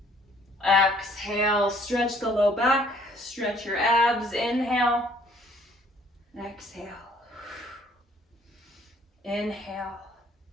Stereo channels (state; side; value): normal; both; correlation 0.61